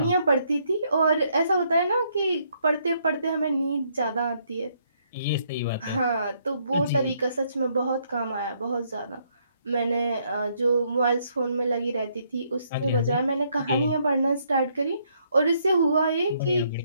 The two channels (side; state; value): both; inverted; correlation -0.71